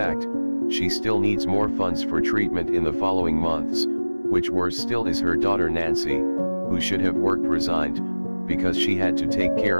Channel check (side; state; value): both; inverted; correlation -1.00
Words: she still needs more funds for treatment in the following months, which worse still is her daughter Nancy, who should have worked resigned, because she had to take care